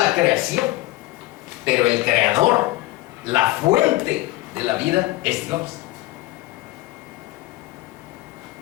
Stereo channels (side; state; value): right; quieter; 18.3 dB